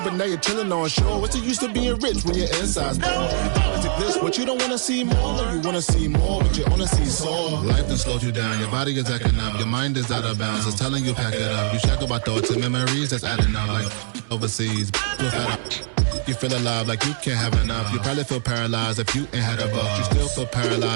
but now you're chilling on shore. What's the use of being rich when your inside's poor? This, what you don't wanna see more, you wanna see more, but you wanna see sore. Life done slowed you down, your body is acting up, your mind is out of bounds, it's telling you pack it up. You shack about thoughts and memories that's adding up like overseas. You feel alive like you can't have enough. You probably feel paralyzed if you ain't had a buck. You still feel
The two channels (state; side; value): silent; left; digital silence